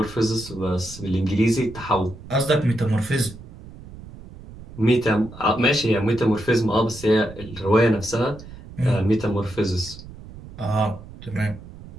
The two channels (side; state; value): right; noise; rumble, 16 dB below the sound